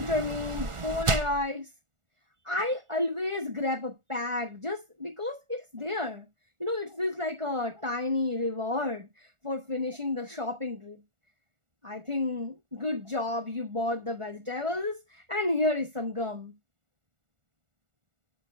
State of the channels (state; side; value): late; left; 1.4 ms